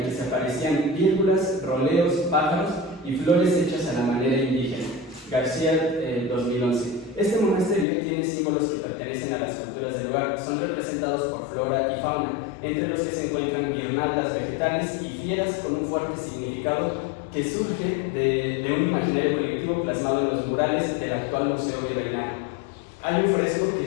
que se aparecían vírgulas, roleos, pájaros y flores hechas a la manera indígena. García, 2011. Este monasterio tiene símbolos que pertenecen a las culturas del lugar, son representados por flora y fauna, entre los que se encuentran guirnaldas vegetales y fieras con un fuerte significado que surge de un imaginario colectivo plasmado en los murales del actual Museo Virreinal. Hay un fresco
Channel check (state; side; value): drops out; right; at 7.9 s